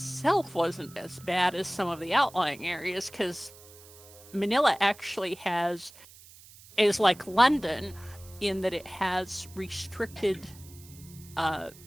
wasn't as bad as some of the outlying areas, because Manila actually is like London in that it has restricted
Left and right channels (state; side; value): noise; right; hiss, 21 dB below the sound